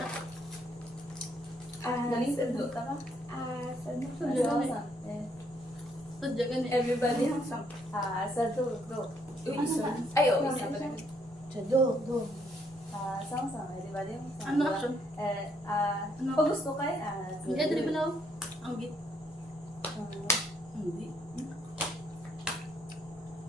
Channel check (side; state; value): both; normal; correlation 0.70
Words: Galing sa duta ka. Sadya ka na. Everybody has some. Sa dulo. Uy, Ano isa. ba? Ay, oo, Ano isa ba? pa rin. Sa do. Sang-sang, di ba din? Ano action? Ano? Pag gusto kayo, Hindi, dali ba na? Ang git. Hindi.